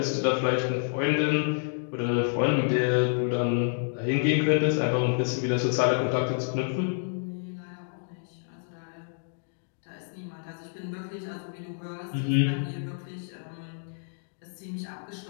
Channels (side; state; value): right; silent; digital silence